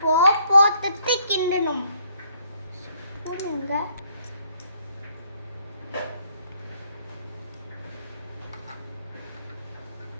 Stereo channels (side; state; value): both; inverted; correlation -0.66